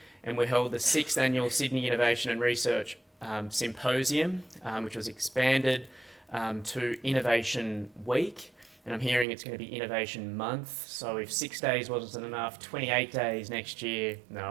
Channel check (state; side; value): drops out; left; at 9.2 s